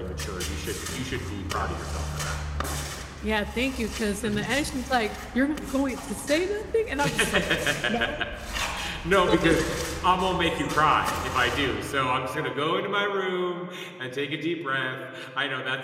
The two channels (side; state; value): both; identical; correlation 1.00